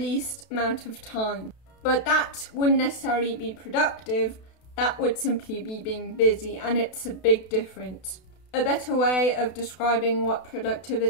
amount of time. But that wouldn't necessarily be productive, that would simply be being busy, and it's a big difference. A better way of describing what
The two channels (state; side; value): late; right; 32 ms